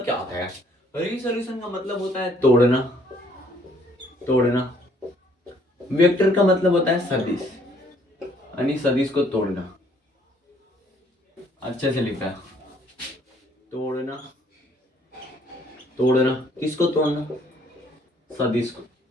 क्या होता है, रिसोल्यूशन का मतलब होता है तोड़ना, तोड़ना, वेक्टर का मतलब होता है सदिश, यानी सदिश को तोड़ना, अच्छे से लिखा है तोड़ना, तोड़ना किसको तोड़ना सदिश को,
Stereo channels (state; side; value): normal; both; correlation 0.63